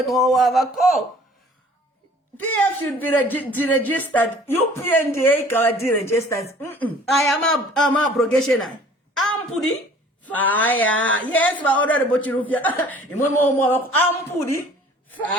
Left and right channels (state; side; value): normal; both; correlation 0.51